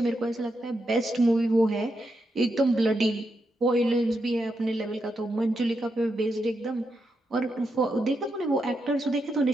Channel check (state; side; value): normal; both; correlation 0.84